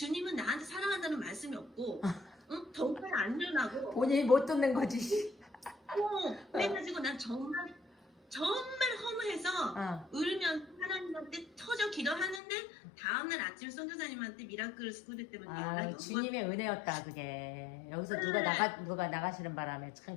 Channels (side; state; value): right; drops out; at 12.4 s